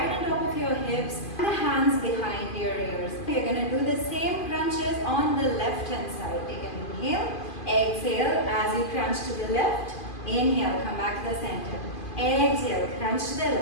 on top of your hips and the hands behind your ears. You're going to do the same crunches on the left hand side. Take an inhale. Exhale as you crunch to the left. Inhale, come back to the center. Exhale, crunch to the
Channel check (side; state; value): right; late; 2.5 ms